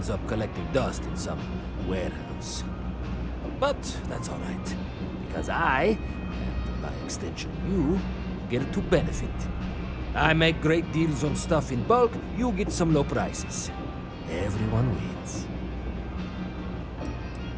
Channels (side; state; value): both; identical; correlation 1.00